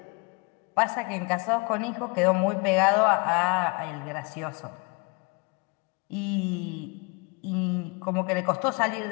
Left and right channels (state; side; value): quieter; right; 30.3 dB